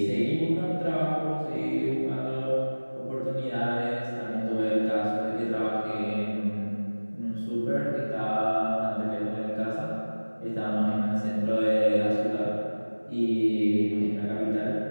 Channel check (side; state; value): both; inverted; correlation -1.00